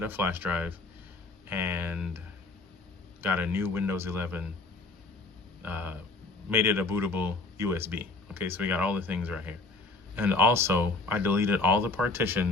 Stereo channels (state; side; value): quieter; right; 3.3 dB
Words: a flash drive and got a new Windows 11, made it a bootable USB. Okay, so we got all the things right here. And also, I deleted all the